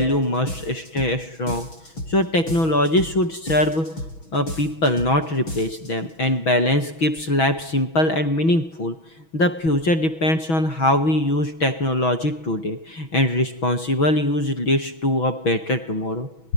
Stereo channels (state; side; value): late; right; 6.2 ms